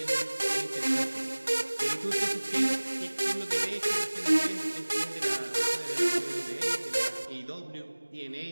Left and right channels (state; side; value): inverted; both; correlation -1.00